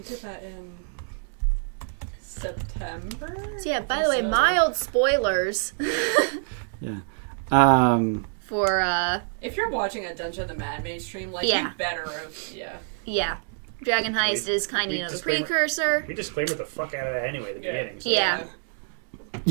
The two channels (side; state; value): left; silent; digital silence